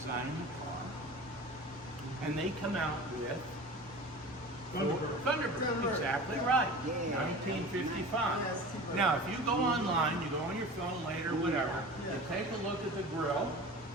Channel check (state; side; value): normal; both; correlation 0.36